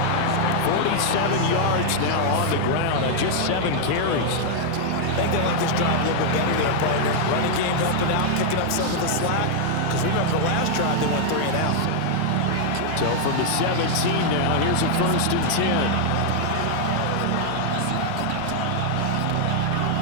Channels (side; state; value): both; different; correlation -0.01